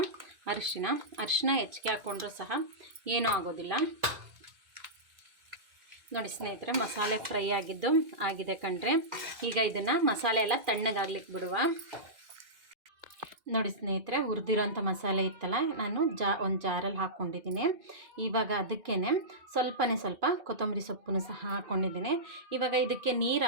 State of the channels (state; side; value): late; left; 2.2 ms